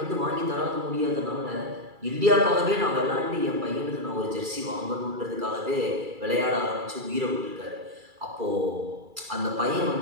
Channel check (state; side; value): late; left; 2.3 ms